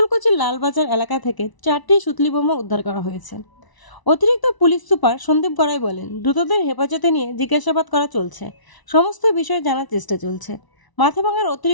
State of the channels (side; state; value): right; late; 1.0 ms